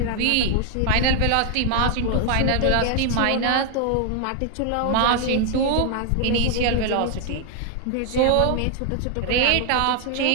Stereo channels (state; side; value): different; both; correlation 0.00